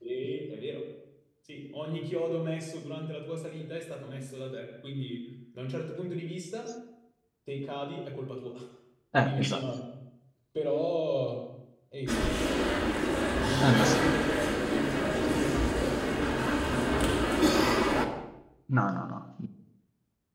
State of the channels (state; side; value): identical; both; correlation 1.00